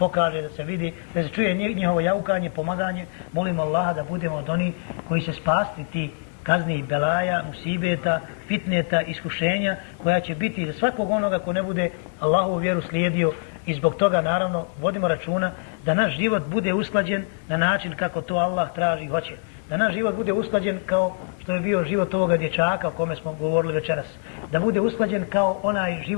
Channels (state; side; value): silent; right; 55 dB below the other